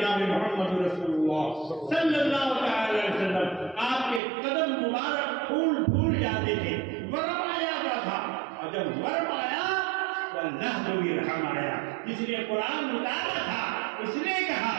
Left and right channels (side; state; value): left; drops out; at 4.2 s